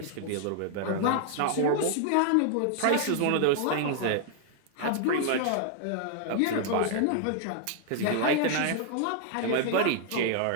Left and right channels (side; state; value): both; different; correlation 0.00